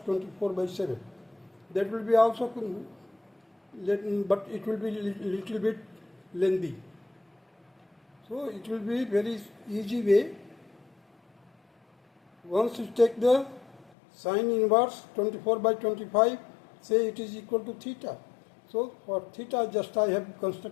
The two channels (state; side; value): drops out; right; at 13.9 s